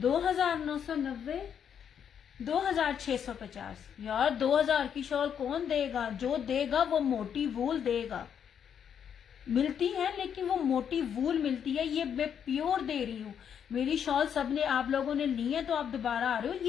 2650 यार। 2000 की शॉल कौन देगा? जो देगा वो मोटी वूल देगा। मिलती है लेकिन वो मोटी वूल मिलती है, ये मैं प्योर दे रही हूँ। मेरी शॉल सबने, आप लोगों ने ली है तो आप दोबारा आ रहे हो।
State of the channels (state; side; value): quieter; right; 8.2 dB